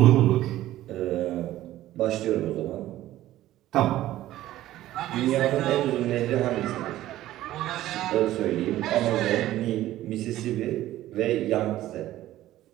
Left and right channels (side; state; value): left; quieter; 14.5 dB